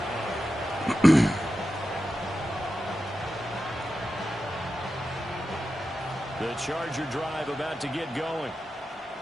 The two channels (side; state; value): both; normal; correlation 0.91